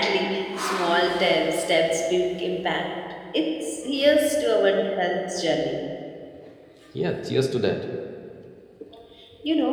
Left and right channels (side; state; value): both; identical; correlation 1.00